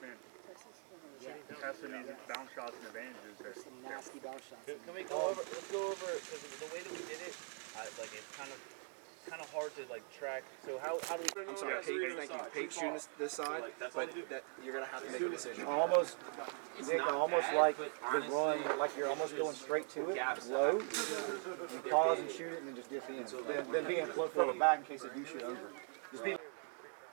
testing these bounce shots and advantages. There's some nasty bounce shots. Can we go over, let's go over, because the way that we did it, it's kind of hard to track. So how do we? I'm sorry, Pate shooting this side, but that you're gonna have to make a decision. Almost like the run, like you're almost going straight to it, low. You pause and shoot it, and then just dip in. Then being further back in case they do shoot over. Just be.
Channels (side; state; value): left; silent; 50 dB below the other